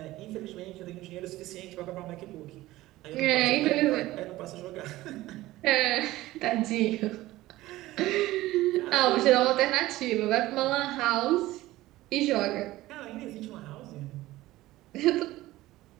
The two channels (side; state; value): left; quieter; 17.1 dB